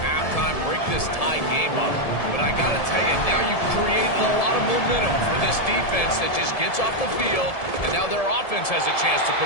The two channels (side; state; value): right; late; 1.7 ms